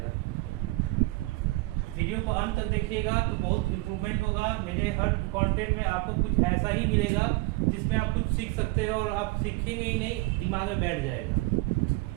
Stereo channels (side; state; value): left; quieter; 22.5 dB